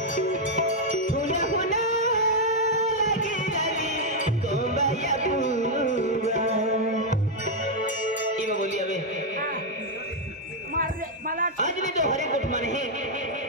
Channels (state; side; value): normal; both; correlation 0.00